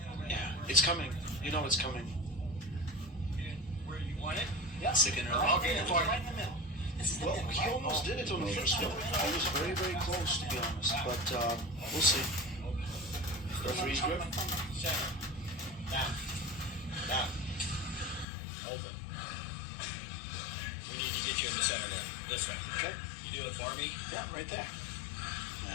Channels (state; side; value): drops out; right; at 18.2 s